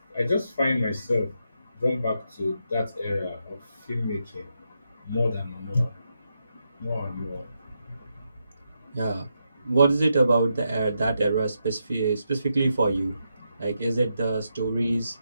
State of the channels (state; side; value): inverted; both; correlation -0.83